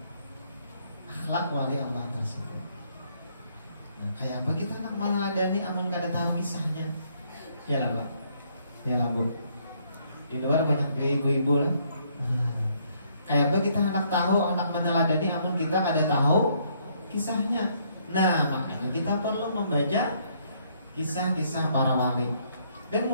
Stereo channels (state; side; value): inverted; both; correlation -0.68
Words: akhlak wali Allah tersebut. Nah, kayak apa kita nak meneladani amun gak ada tahu kisahnya? Ya lah Pak, ya lah Bu. Di luar banyak ibu-ibu lah. Kayak apa kita anak tahu, anak meneladani amun kita gak ada tahu kisahnya. Nah, makanya kita perlu membaca kisah-kisah para wali. Dan